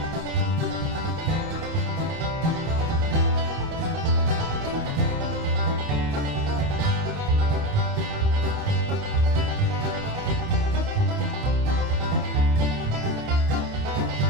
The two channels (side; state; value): left; late; 29 ms